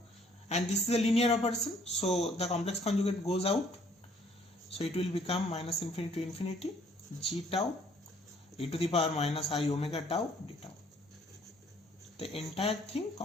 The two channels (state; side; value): normal; both; correlation 0.61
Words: and this is a linear operation, so the complex conjugate goes out, so it will become minus infinity to infinity g tau e to the power minus I omega tau d tau, the entire thing